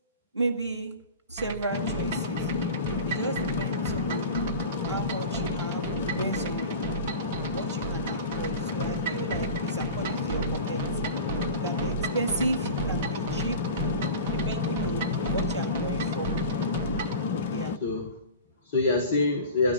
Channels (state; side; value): inverted; both; correlation -0.35